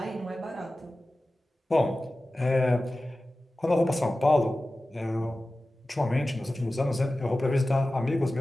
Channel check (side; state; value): both; normal; correlation 0.95